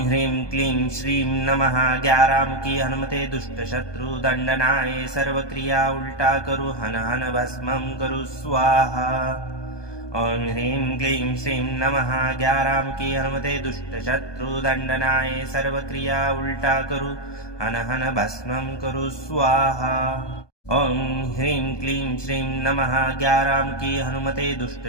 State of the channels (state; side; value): late; right; 1.2 ms